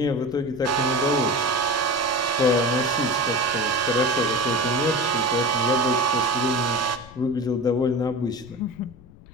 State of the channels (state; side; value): noise; left; rumble, 21 dB below the sound